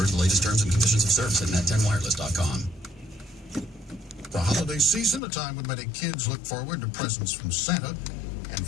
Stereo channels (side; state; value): right; drops out; at 5.2 s